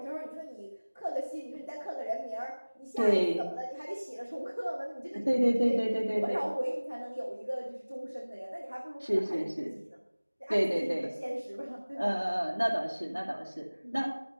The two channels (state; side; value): inverted; both; correlation -1.00